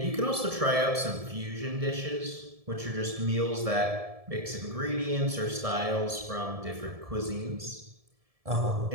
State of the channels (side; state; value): left; late; 1.7 ms